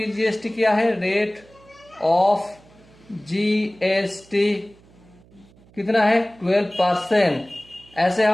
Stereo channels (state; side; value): noise; right; hum, 27 dB below the sound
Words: क्या है? रेट ऑफ जीएसटी कितना है? 12%। ऐसे